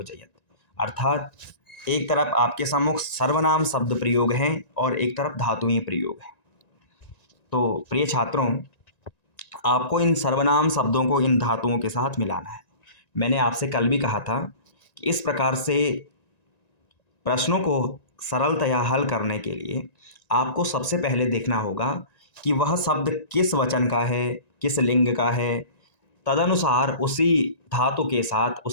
अर्थात एक तरफ आपके सम्मुख सर्वनाम शब्द प्रयोग हैं और एक तरफ धातुएं प्रयोग हैं। तो प्रिय छात्रों, आपको इन सर्वनाम शब्दों को इन धातुओं के साथ मिलाना है। मैंने आपसे कल भी कहा था कि इस प्रकार से प्रश्नों को सरलतया हल करने के लिए आपको सबसे पहले देखना होगा कि वह शब्द किस वचन का है, किस लिंग का है। तदनुसार उसी धातु के साथ,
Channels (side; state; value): right; late; 1.9 ms